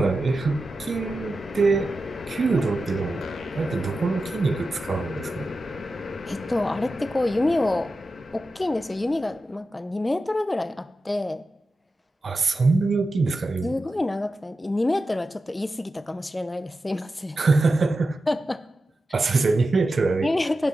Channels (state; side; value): normal; both; correlation 0.91